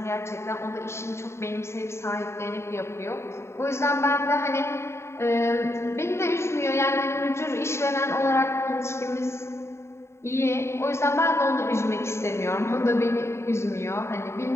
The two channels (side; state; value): right; late; 0.13 ms